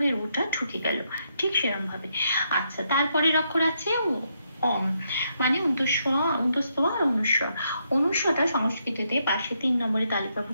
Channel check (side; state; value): both; inverted; correlation -0.78